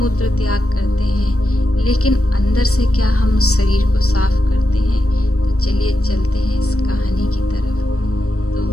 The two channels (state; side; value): late; right; 0.65 ms